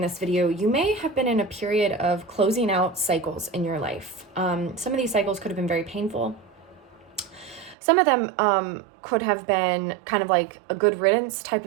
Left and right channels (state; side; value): drops out; left; at 7.8 s